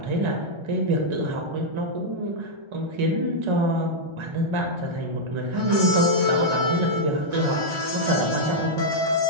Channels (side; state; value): left; late; 1.3 ms